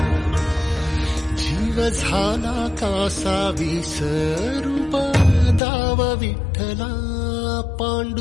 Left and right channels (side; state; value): right; drops out; at 5.6 s